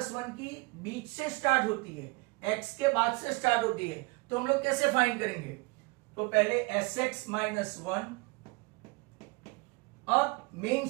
1 की बीच से स्टार्ट होती है, x के बाद से स्टार्ट होती है, तो हम लोग कैसे फाइंड करेंगे? तो पहले Sx माइनस 1। अब मेन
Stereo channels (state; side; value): quieter; left; 27.0 dB